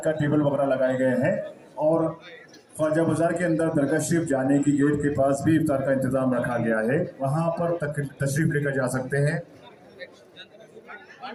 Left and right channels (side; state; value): both; identical; correlation 1.00